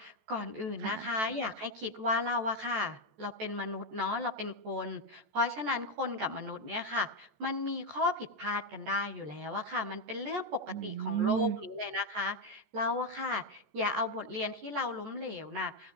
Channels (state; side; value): late; left; 14 ms